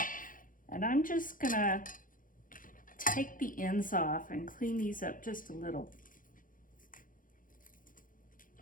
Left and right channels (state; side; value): late; right; 0.39 ms